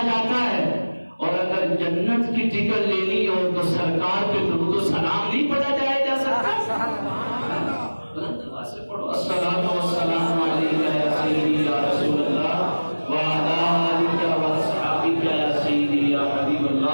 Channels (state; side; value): inverted; both; correlation -1.00